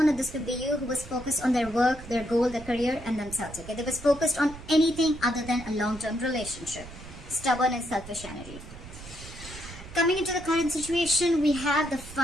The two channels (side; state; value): right; noise; rumble, 15 dB below the sound